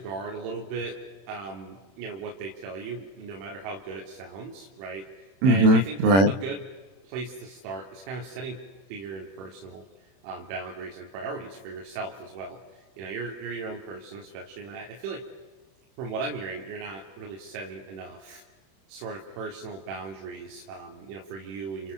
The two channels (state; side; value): late; left; 31 ms